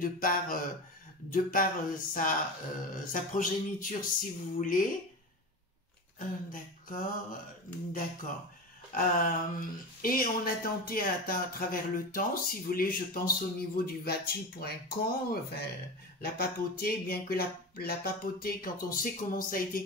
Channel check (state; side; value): normal; both; correlation 0.25